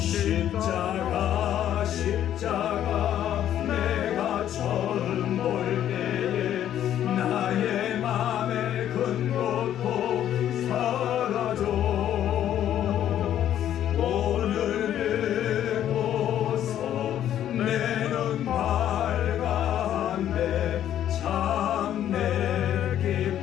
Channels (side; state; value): right; quieter; 11.0 dB